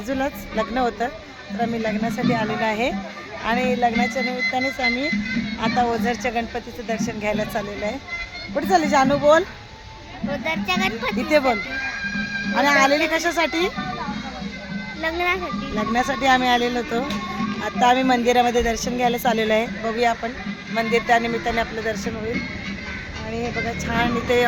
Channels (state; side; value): identical; both; correlation 1.00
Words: लग्न होतं, तर आम्ही लग्नासाठी आलेलो आहे आणि लग्नाच्या निमित्तानेच आम्ही आता ओझरच्या गणपतीचं दर्शन घ्यायला चाललेलो आहे. कुठे चालले जानू? बोल. ओझरच्या गणपती इथे बोल. आणि आलेली कशासाठी? लग्नासाठी आम्ही आलेलो होतो. आता आम्ही मंदिरामध्ये दर्शन घ्यायला चाललेलो आहे. बघूया आपण मंदिर, त्या निमित्ताने आपलं दर्शन होईल. आणि हे बघा छान इथे